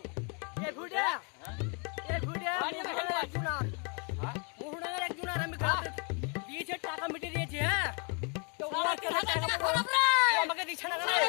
এই ভুড়া একজনার হ্যাঁ মোহনার একজনার আমি গাতে দিয়েছে টাকা মিটে দিয়েছে হ্যাঁ তো ওরা কে টাকা খরাব রে আমাকে দিছ না রে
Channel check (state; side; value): quieter; right; 36.0 dB